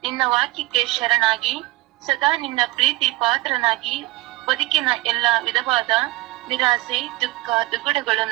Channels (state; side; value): quieter; left; 19.4 dB